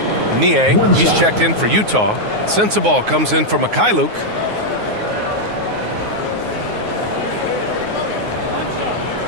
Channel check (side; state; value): left; late; 9.5 ms